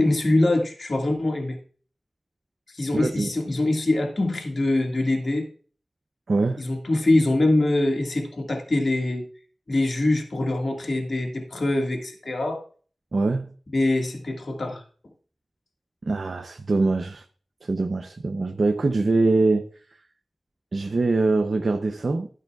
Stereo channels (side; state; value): both; normal; correlation 0.95